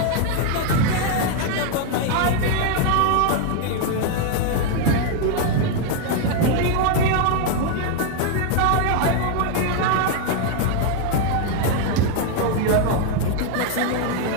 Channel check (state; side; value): different; both; correlation 0.00